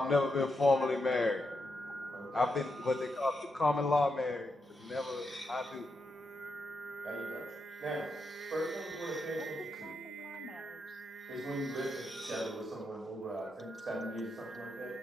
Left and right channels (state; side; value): normal; both; correlation 0.84